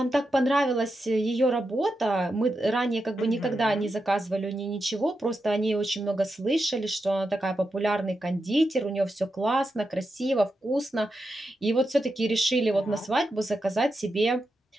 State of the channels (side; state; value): both; normal; correlation 0.87